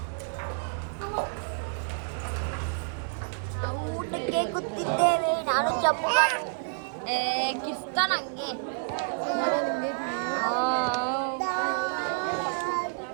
ನಾವು ಊಟಕ್ಕೆ ಕೂತಿದ್ದೇವೆ, ನಾನು ಚಂಪುಗನು. ಕಿರ್ಸ್ತಾನ ಹಂಗೆ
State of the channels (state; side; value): silent; left; 59 dB below the other